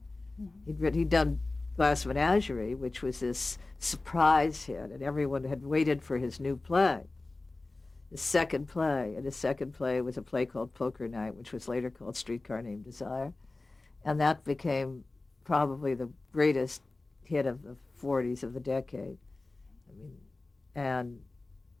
He'd done Glass Menagerie, which was this surprise hit, and everyone had waited for his new play, his second play. And his second play was a play called Poker Night, which was later called Streetcar Named Desire. And that became probably the greatest hit of the 40s of the decade. I mean, and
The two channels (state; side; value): quieter; right; 3.2 dB